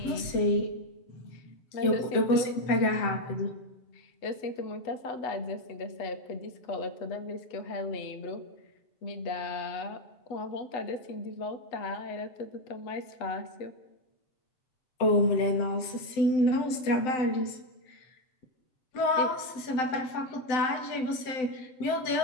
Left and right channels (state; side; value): late; right; 7.8 ms